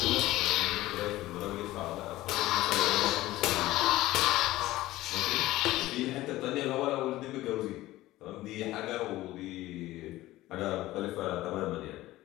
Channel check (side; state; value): right; quieter; 16.7 dB